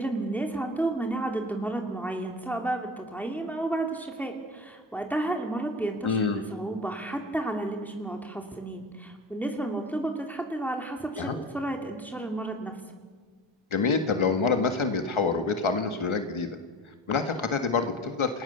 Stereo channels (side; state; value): both; normal; correlation 0.34